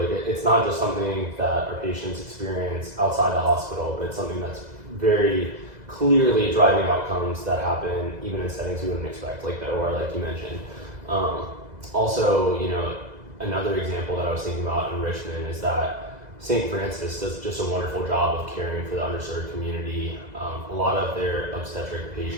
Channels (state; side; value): late; left; 2.0 ms